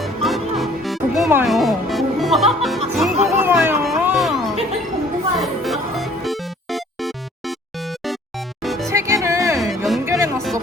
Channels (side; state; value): both; normal; correlation 0.55